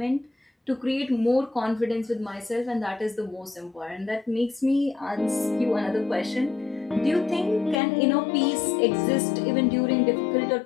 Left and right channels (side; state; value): right; drops out; at 7.8 s